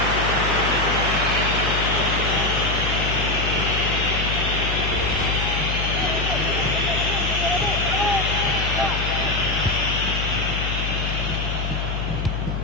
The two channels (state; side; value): noise; left; hum, 2 dB below the sound